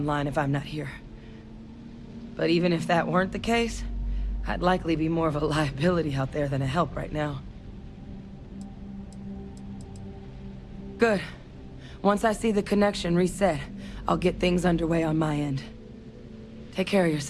if I'm not here. But even if that weren't the case, I'd likely be more of a liability out there than a help right now. Good. Once I see the connection reset, I'll get things underway on my end. Take care of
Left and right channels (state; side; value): identical; both; correlation 1.00